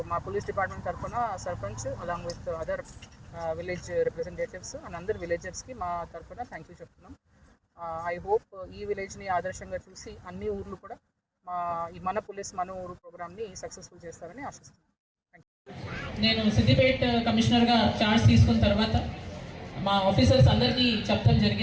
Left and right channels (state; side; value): identical; both; correlation 1.00